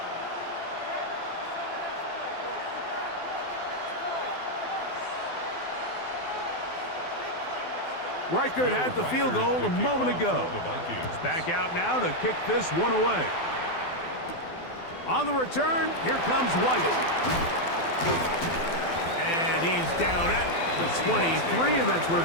Reichert had the field goal a moment ago. He's back out now to kick this one away. On the return, here comes White. And he's down at the 23, and that's where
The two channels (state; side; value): late; right; 12 ms